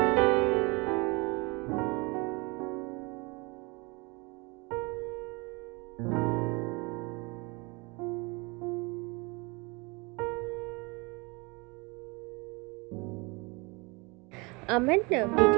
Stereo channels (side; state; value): left; quieter; 27.3 dB